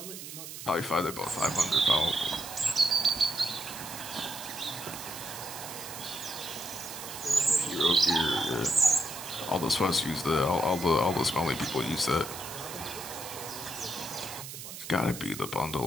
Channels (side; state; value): right; noise; hiss, 10 dB below the sound